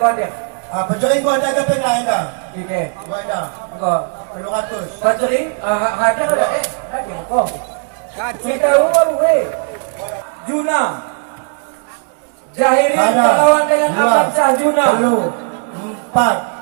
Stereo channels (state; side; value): silent; left; 56 dB below the other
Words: gua Hadir. Pencuri gua ada ke lain dah. Oke. Gua ada. Enggak. 700. Paceri Hadir ada Hadir kok. Kacau. Kita umur weh. Juna. Jahirin perlawan dengan Amansyah Juna.